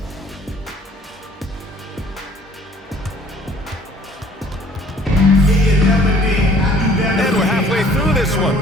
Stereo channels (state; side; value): normal; both; correlation 0.56